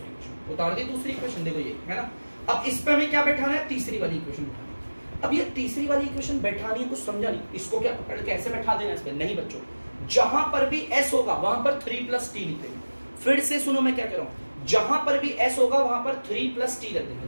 इक्वेशन, उतार दी दूसरी इक्वेशन, देखो ये है ना। अब इस पे हमें क्या बैठाना है, तीसरी वाली इक्वेशन बैठानी है। अब ये तीसरी वाली इक्वेशन बैठानी है, कुछ समझा नहीं, इसको क्या पकड़ के ऐसे बैठा देना इस पे, नहीं बच्चों। जहां पर भी s होगा वहां पर 3 प्लस t लिख देंगे। फिर से सुनो मैं क्या कह रहा हूं, जहां पर भी s होगा वहां पर 3 प्लस t रख देंगे।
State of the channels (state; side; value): inverted; both; correlation -1.00